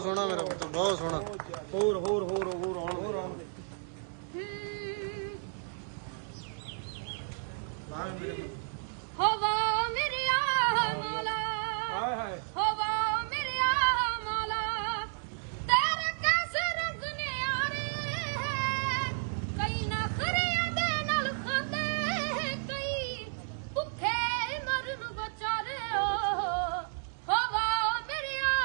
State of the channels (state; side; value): silent; left; 56 dB below the other